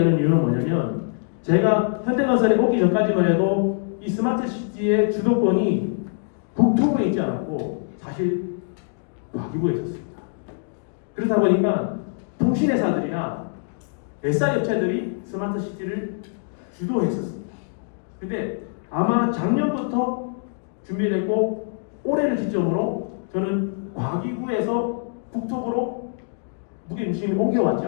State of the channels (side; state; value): right; silent; digital silence